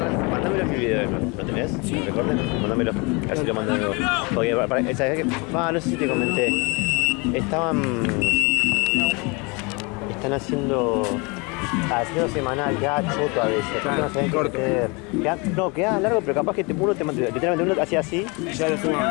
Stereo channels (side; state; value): right; quieter; 29.0 dB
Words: Mándamelo en mi video. ¿Lo tenés? ¿Lo recorden? Mándamelo. A ver si lo mando de nuevo. Porque ¿sabes qué? No sé si te comenté. Están haciendo semanal, queda choto a veces. Claro, No saben qué corto. meter. Queda largo, pero capaz que literalmente uno hacía así, Y ya lo subo